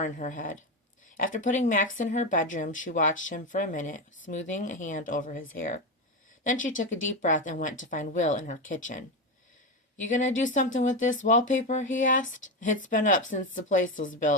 in her head. After putting Max in her bedroom, she watched him for a minute, smoothing a hand over his hair. Then she took a deep breath and went to find Will in her kitchen. "You gonna do something with this wallpaper?" he asked. "It's been up since the place was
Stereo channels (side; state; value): both; normal; correlation 0.14